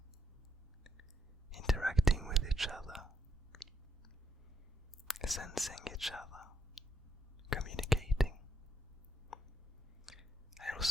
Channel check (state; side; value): normal; both; correlation 0.78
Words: interacting with each other, sensing each other, communicating. I